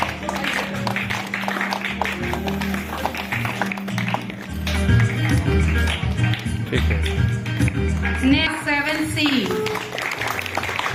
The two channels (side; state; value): both; identical; correlation 1.00